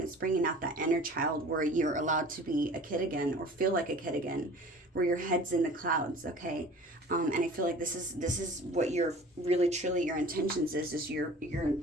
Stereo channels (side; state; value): both; normal; correlation 0.44